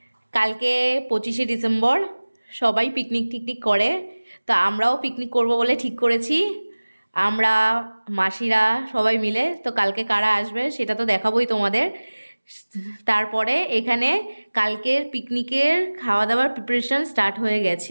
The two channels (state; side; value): inverted; both; correlation -1.00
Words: কালকে 25শে ডিসেম্বর, সবাই পিকনিক টিকনিক করে, তো আমরাও পিকনিক করব বলে ঠিক করেছি। আমরা মাসিরা সবাই মিলে। তো কালকে কারা আসবে সেটা তো দেখাবোই তোমাদের। তারপরে এখানে কালকের পিকনিকের খাওয়া দাওয়ার প্রিপারেশন স্টার্ট হয়ে গেছে